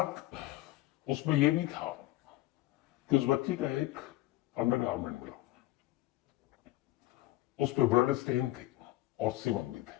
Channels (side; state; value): right; quieter; 17.0 dB